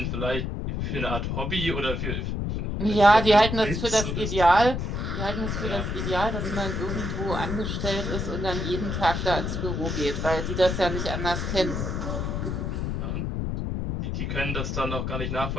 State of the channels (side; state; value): left; noise; rumble, 2 dB below the sound